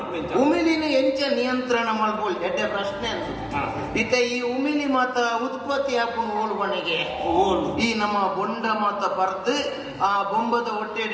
ಉಮಿಲಿನ ಎಂಚ ನಿಯಂತ್ರಣ ಮಾಡ್ಬೋದು ಎಡ್ಡೆ ಪ್ರಶ್ನೆ ಅಂತ ಇತ್ತ ಈ ಉಮಿಲಿ ಮಾತ ಉತ್ಪತ್ತಿ ಹಾಕೊಂಡು ಓಲ್ಬಣಿಗೆ ಈ ನಮ್ಮ ಬೊಂಡ ಮಾತ ಬರ್ದು ಆ ಬೊಂಬದ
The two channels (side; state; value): both; identical; correlation 1.00